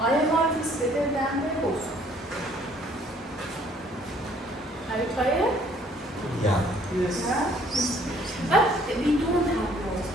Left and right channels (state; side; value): normal; both; correlation 0.61